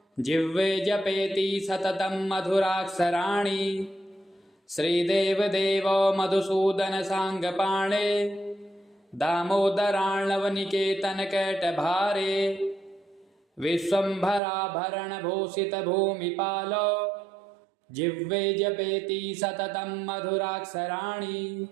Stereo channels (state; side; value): drops out; left; at 14.4 s